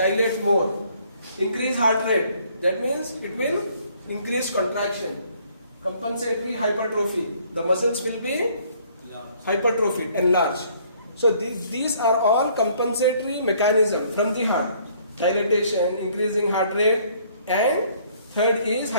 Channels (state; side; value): inverted; both; correlation -0.62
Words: more. Increase heart rate, that means it will increase contraction. Compensatory hypertrophy, the muscles will be hypertrophied, enlarged. So these are all compensatory mechanism from the heart. Dilatation, increasing heart rate, and third is